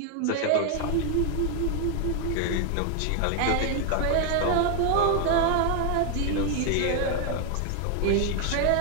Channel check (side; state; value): both; different; correlation 0.00